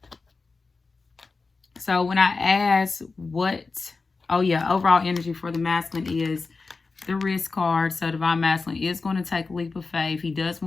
So when I ask overall energy for the masculine is the risk card. So divine masculine is going to take a leap of faith. He does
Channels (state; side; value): quieter; right; 4.1 dB